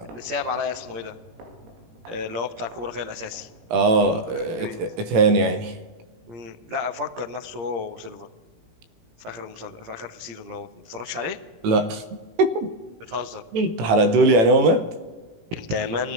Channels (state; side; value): late; left; 18 ms